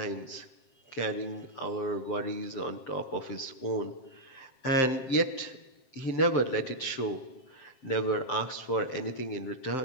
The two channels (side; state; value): right; late; 7.6 ms